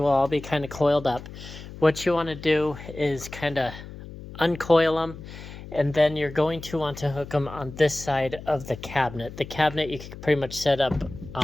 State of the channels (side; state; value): left; noise; hum, 14 dB below the sound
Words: all be kind of coiled up. What you want to do is kind of uncoil them, and then you're going to want to hook them on this side of the cabinet. The cabinet you can pretty much set up